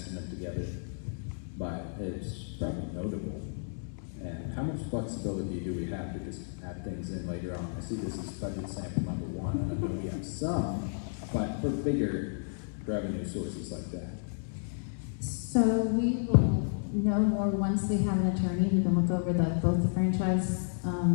together, but it's probably notable. And how much flexibility do we have to just add things in later on? I see this is budget sample number 1, and I know we have some, but for bigger revenue sources like that. So we will know more once we have an attorney who can look over both the franchise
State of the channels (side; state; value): right; silent; 57 dB below the other